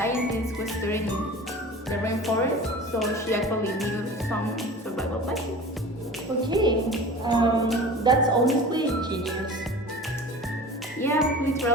who studied in the rainforest, so she actually knew some survival techniques. Okay, that's honestly genius. Yeah,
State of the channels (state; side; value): normal; both; correlation 0.38